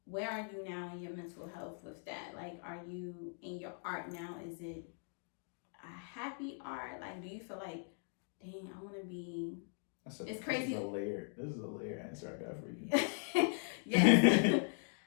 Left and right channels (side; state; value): right; silent; 51 dB below the other